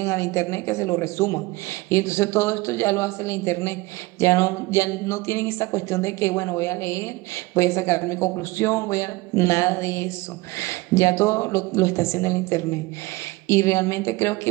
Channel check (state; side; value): quieter; left; 21.7 dB